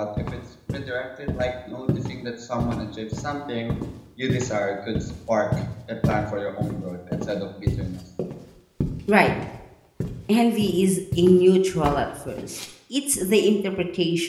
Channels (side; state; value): both; identical; correlation 1.00